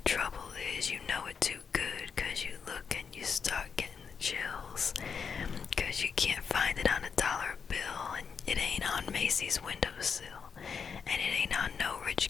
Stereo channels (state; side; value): quieter; right; 6.2 dB